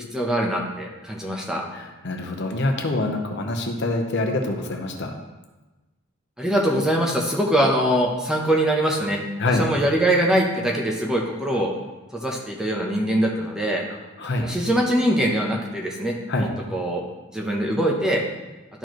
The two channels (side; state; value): both; normal; correlation 0.60